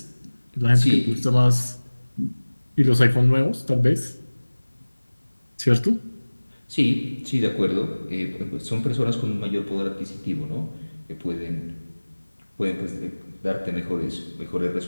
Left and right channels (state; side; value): inverted; both; correlation -1.00